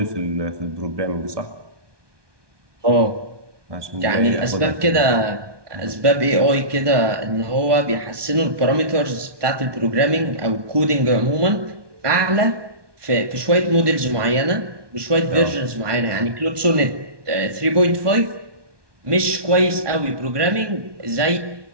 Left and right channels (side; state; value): left; late; 1.2 ms